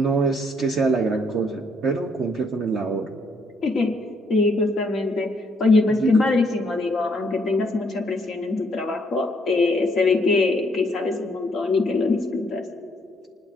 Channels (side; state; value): both; normal; correlation 0.70